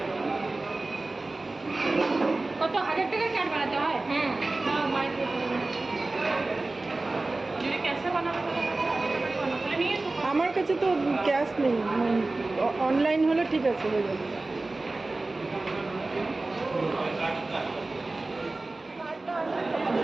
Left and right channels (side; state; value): left; quieter; 3.2 dB